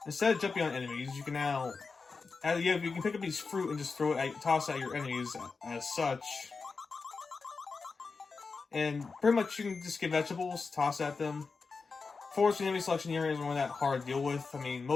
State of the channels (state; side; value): quieter; right; 4.6 dB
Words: Instead of jumping on enemies, you can now you can pick up these fruit and just toss at your enemies as such. And pretty much you can just get vegetables, toss at them. Fortunately, enemy selection here isn't really that hard to deal with. I mean,